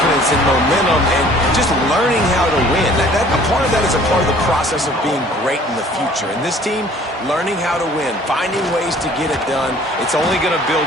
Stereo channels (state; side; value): normal; both; correlation 0.53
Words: and momentum and just learning how to win. A part of that is a part of the process of being great in the future. And this team, learning how to win, finding ways to get it done, it's only going to build